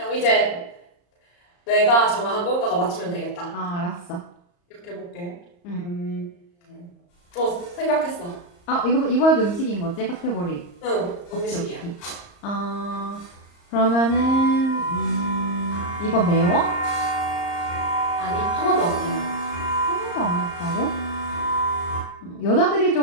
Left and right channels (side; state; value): right; late; 34 ms